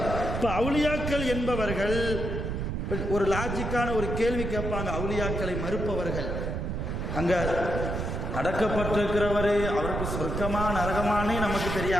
இப்ப அவுலியாக்கள் என்பவர்கள் ஒரு லாஜிக்கான ஒரு கேள்வி கேட்பாங்க. அவுலியாக்களை மறுப்பவர்கள், அங்க அடக்கப்பட்டிருக்கிறவரு அவருக்கு சொர்க்கமா நரகமானே நமக்கு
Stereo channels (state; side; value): noise; right; rumble, 3 dB below the sound